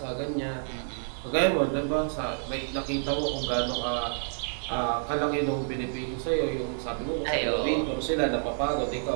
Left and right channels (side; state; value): left; silent; 59 dB below the other